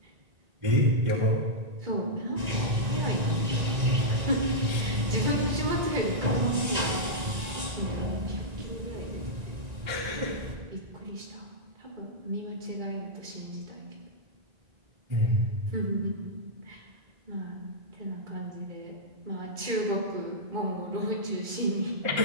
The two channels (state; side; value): late; left; 1.9 ms